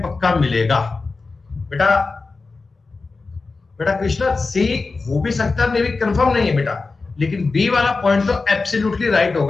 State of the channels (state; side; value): quieter; right; 3.9 dB